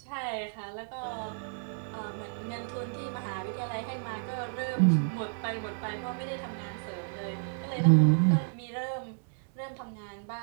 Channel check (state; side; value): silent; left; digital silence